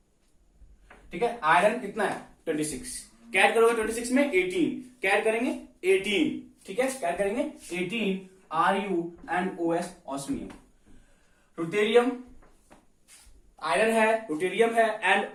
ठीक है, आयरन कितना है 26, कैड करोगे 26 में 18, कैड करेंगे 18, ठीक है, कैड करेंगे 18, Ru and OS, osmium. Ruthenium, iron है, रुटेरियम है एंड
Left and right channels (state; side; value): identical; both; correlation 1.00